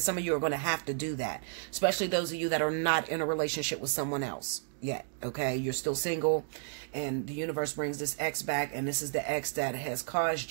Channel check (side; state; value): left; silent; digital silence